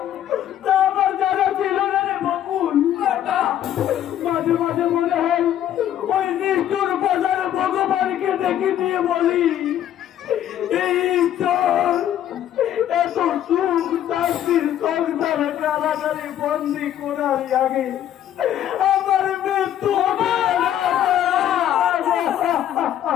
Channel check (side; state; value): right; quieter; 11.1 dB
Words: তা আমার জানা ছিল না রে বকুল। মাঝে মাঝে মনে হয় ওই নিষ্ঠুর বাজারে ভগবানকে ডেকে নিয়ে বলি, এই ঈশ্বর এত সুখ শান্তির সংসারে কারাগারে বন্দি করার আগে আমার মৃত্যু হবে না।